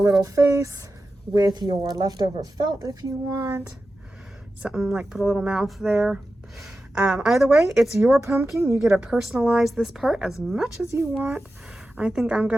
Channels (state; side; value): normal; both; correlation 0.92